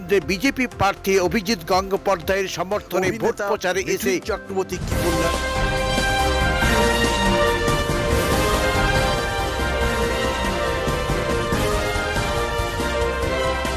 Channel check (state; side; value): identical; both; correlation 1.00